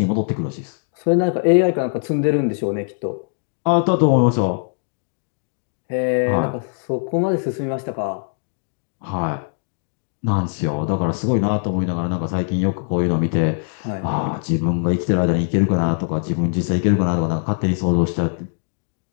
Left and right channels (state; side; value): silent; right; 65 dB below the other